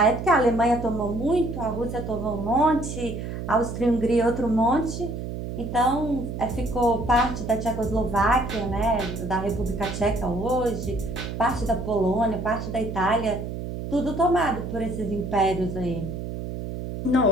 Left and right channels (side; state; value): right; noise; hum, 6 dB below the sound